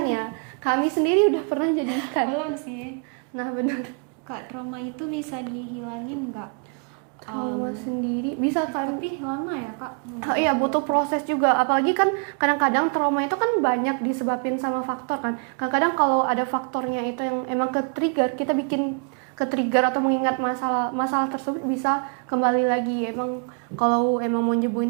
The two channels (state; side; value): quieter; left; 39.4 dB